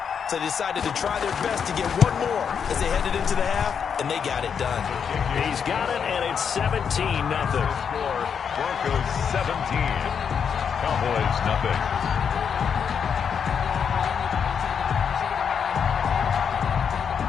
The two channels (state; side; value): quieter; right; 7.1 dB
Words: so they decided to try their best to get one more as they headed into the half, and they got it done. He's got it, and it's 17-0. Broncos 17. Cowboys nothing.